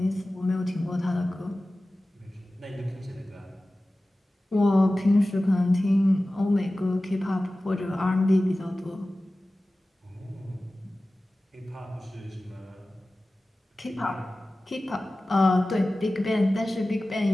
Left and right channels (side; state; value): both; normal; correlation 0.96